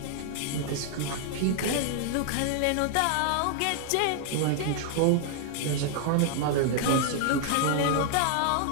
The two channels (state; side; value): different; both; correlation 0.00